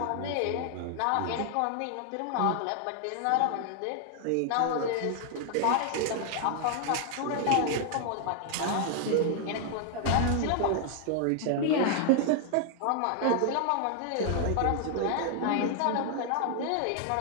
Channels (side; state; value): both; different; correlation 0.00